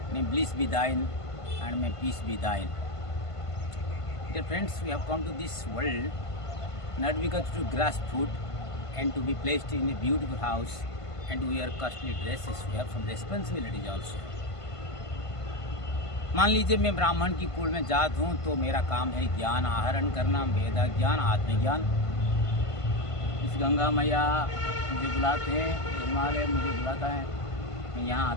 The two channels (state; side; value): late; right; 1.5 ms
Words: May bliss be thine and may peace be thine. Dear friends, we have come to this world not because to grasp food and to be placed in a beautiful house and to wear costly dresses. We have some responsibilities also. मान लीजिए मैं ब्राह्मण की कुल में जात हूँ तो मेरा काम है ज्ञान आहरण करना, वेद ज्ञान, आत्मज्ञान। इस गंगा मैया मुझे बुलाते हैं, हिमालय मुझे बुलाता है, मैं यहाँ